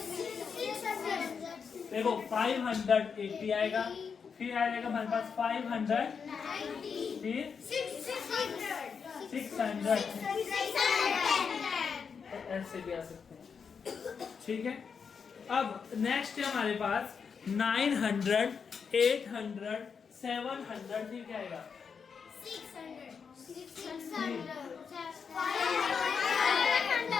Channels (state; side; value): quieter; right; 6.1 dB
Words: देखो 580 आएगा, फिर आएगा हमारे पास 500, फिर 600, ऐसे भी आ सकते हैं। ठीक है, अब नेक्स्ट है हमारे पास 900, 800, 700, फिर क्या आएगा? 600,